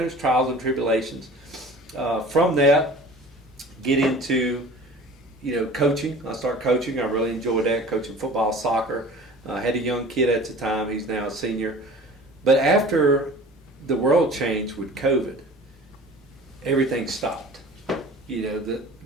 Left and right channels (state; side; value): normal; both; correlation 0.43